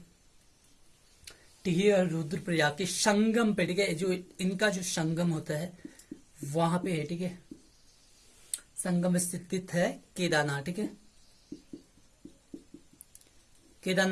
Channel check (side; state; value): both; identical; correlation 1.00